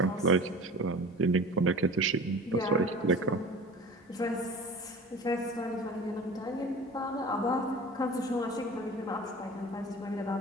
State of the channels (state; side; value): normal; both; correlation 0.39